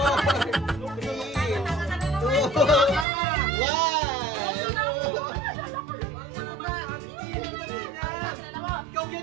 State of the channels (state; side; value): drops out; left; at 3.1 s